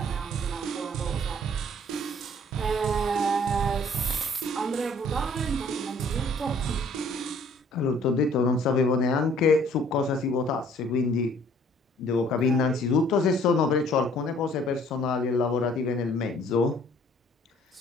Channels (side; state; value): both; normal; correlation 0.57